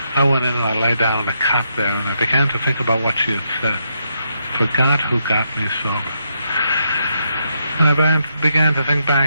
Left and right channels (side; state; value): both; inverted; correlation -0.79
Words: I went in and I lay down on a cot there, and I began to think about what she had said. "Forgot who got me sober." And I began to think